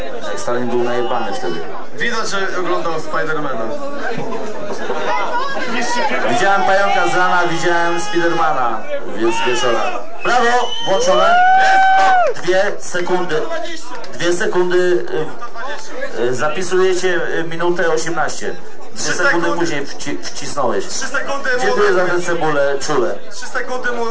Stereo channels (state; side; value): identical; both; correlation 1.00